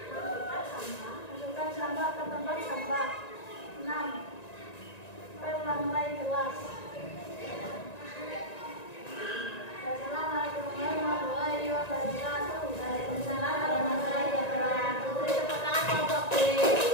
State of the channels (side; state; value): right; late; 1.9 ms